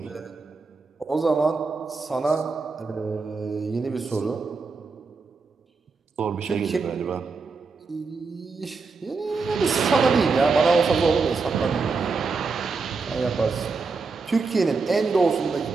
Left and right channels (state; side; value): quieter; left; 4.4 dB